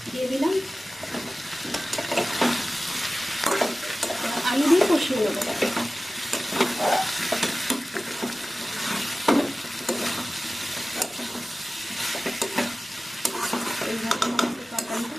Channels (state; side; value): normal; both; correlation 0.96